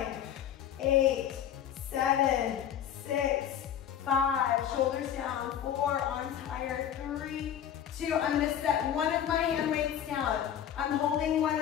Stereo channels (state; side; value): quieter; right; 9.8 dB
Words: 8, 7, 6, 5, shoulders down, 4, arms higher, 3, 2, I'm gonna set one of my hand weights down. I'm holding one